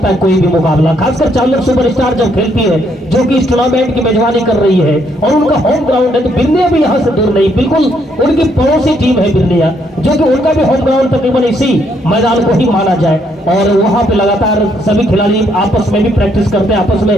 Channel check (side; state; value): both; normal; correlation 0.72